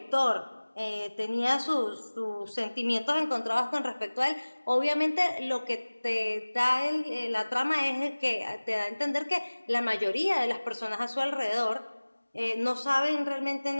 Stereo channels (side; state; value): both; inverted; correlation -1.00